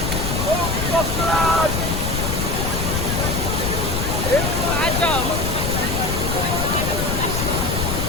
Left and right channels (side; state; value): left; noise; rumble, 1 dB below the sound